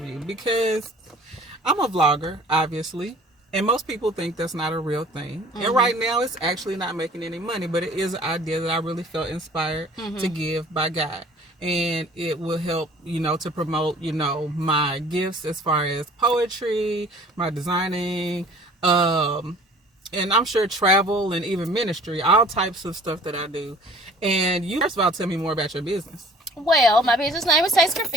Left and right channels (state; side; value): normal; both; correlation 0.50